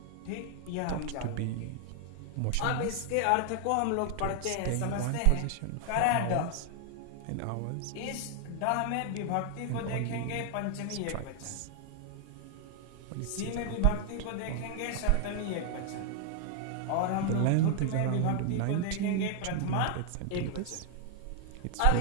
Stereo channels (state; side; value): different; both; correlation 0.00